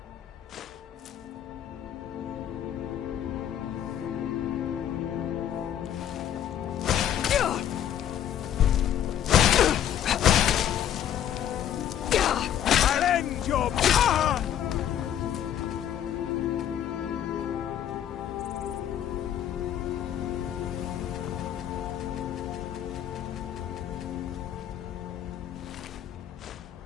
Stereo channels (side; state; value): right; quieter; 10.3 dB